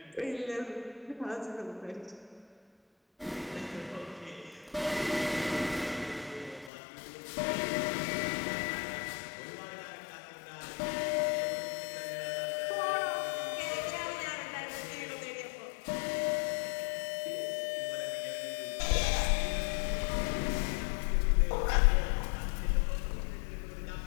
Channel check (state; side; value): drops out; right; at 6.7 s